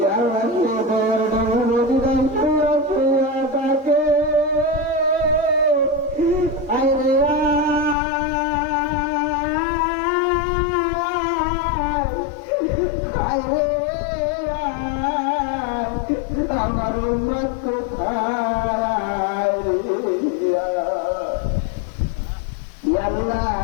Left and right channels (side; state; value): right; drops out; at 8.0 s